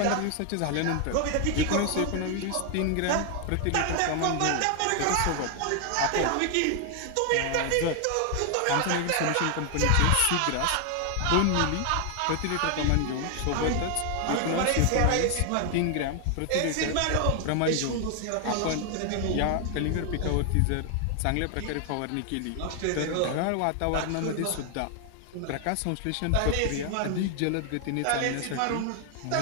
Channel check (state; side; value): different; both; correlation 0.00